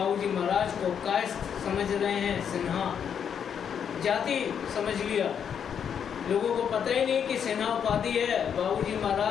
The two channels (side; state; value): right; quieter; 7.9 dB